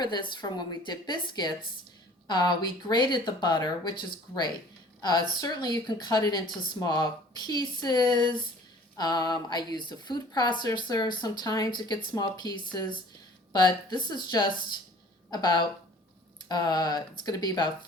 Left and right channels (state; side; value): normal; both; correlation 0.50